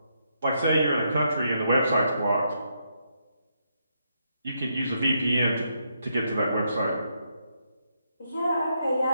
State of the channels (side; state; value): both; inverted; correlation -0.79